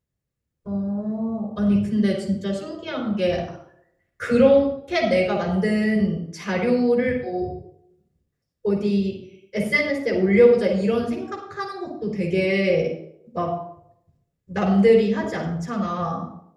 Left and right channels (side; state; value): both; identical; correlation 1.00